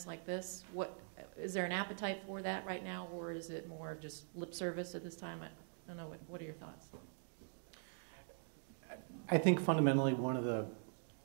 like this, is there an appetite for that right now, or is it more of just lip service at this time? I don't know. What are your thoughts? I think fundamentally one of the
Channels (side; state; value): left; silent; digital silence